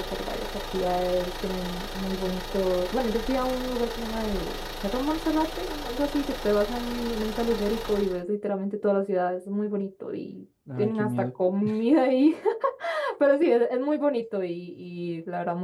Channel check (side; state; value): both; identical; correlation 1.00